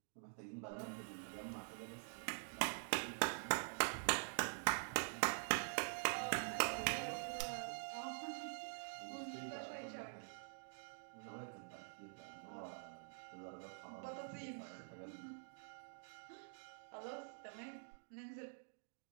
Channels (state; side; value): silent; left; digital silence